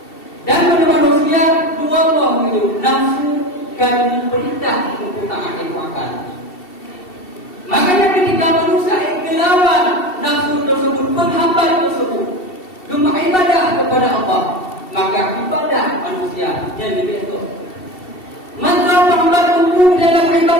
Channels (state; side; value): late; right; 2.7 ms